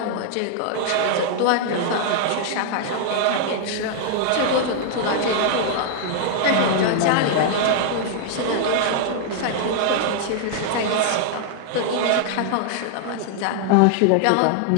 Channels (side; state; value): both; different; correlation -0.01